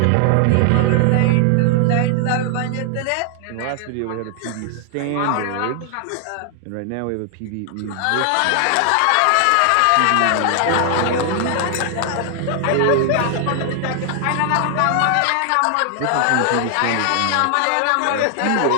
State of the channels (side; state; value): both; different; correlation 0.00